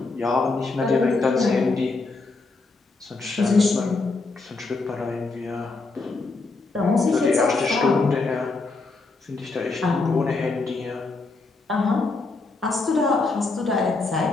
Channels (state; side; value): quieter; right; 3.7 dB